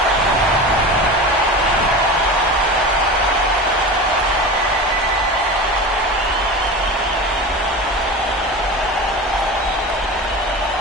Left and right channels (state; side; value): normal; both; correlation 0.30